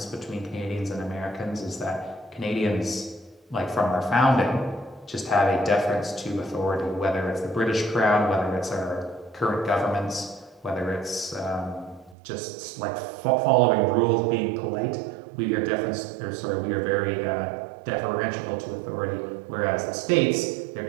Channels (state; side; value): drops out; left; at 12.2 s